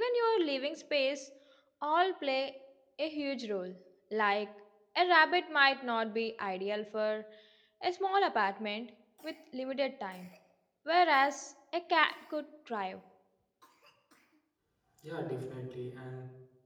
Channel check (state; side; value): identical; both; correlation 1.00